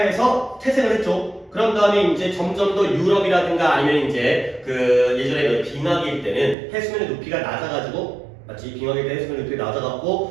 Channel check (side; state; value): left; drops out; at 6.6 s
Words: 태생을 했죠. 그런 다음에 이제 점점 더 유럽이라든가 아니면 이제 그 예전에 빙하기일 때는 해수면의 높이가 낮아가지고 마치 빙하기일 때 해수면의 높이가